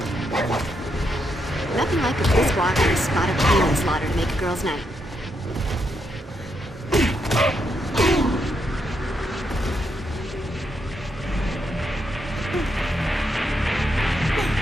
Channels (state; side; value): normal; both; correlation 0.80